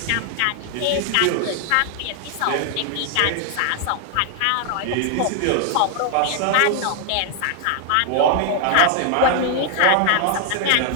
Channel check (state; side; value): different; both; correlation 0.00